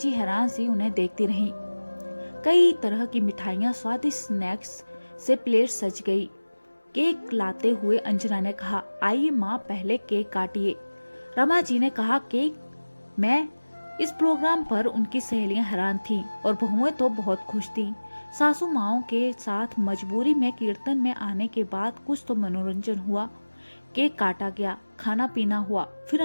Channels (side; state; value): both; inverted; correlation -1.00